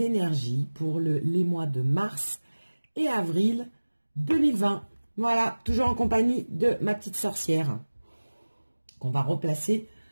pour les mois de mars et avril 2020. Voilà, toujours en compagnie de ma petite sorcière qu'on va replacer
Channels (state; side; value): inverted; both; correlation -1.00